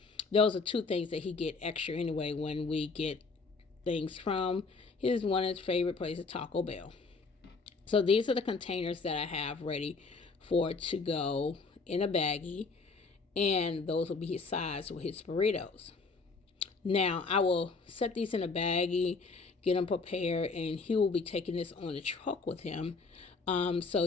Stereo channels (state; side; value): quieter; right; 4.2 dB